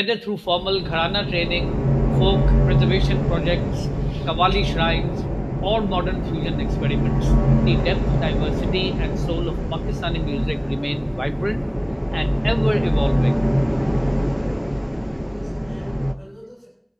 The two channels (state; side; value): identical; both; correlation 1.00